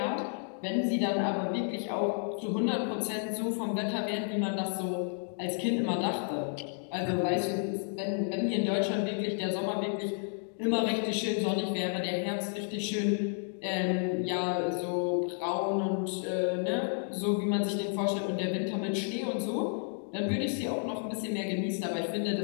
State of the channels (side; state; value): right; silent; 57 dB below the other